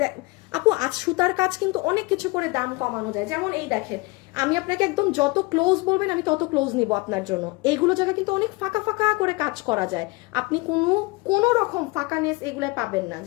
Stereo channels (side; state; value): right; quieter; 24.6 dB